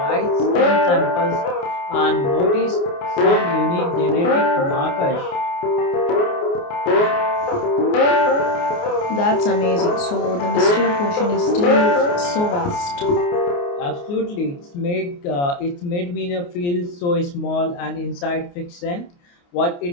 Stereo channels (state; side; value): late; right; 29 ms